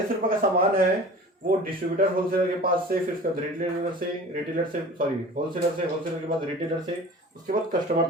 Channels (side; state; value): both; normal; correlation 0.40